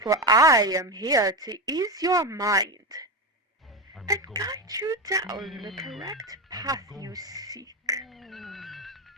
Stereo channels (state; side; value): normal; both; correlation 0.16